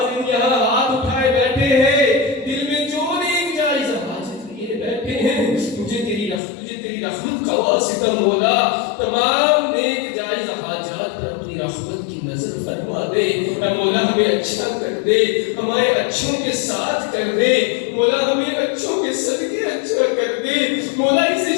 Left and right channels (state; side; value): drops out; right; at 6.4 s